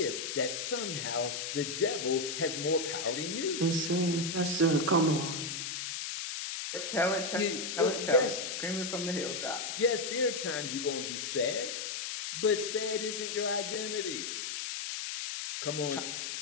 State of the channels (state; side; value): noise; left; hiss, 4 dB below the sound